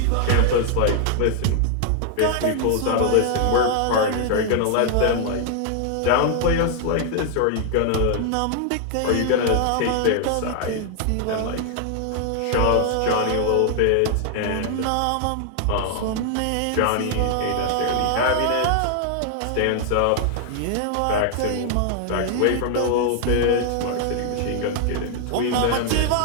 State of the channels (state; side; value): different; both; correlation 0.00